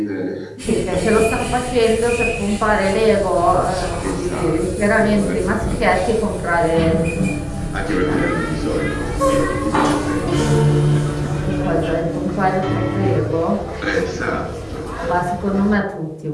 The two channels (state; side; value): identical; both; correlation 1.00